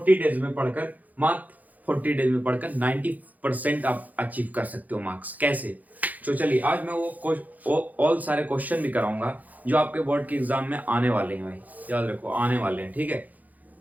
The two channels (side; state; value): left; late; 0.080 ms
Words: डेज में पढ़कर मात्र 40 डेज में पढ़कर 90% आप अचीव कर सकते हो मार्क्स। कैसे? तो चलिए, आज मैं वो ऑल सारे क्वेश्चन भी कराऊंगा जो आपके बोर्ड के एग्जाम में आने वाले हैं। भाई याद रखो, आने वाले हैं, ठीक है।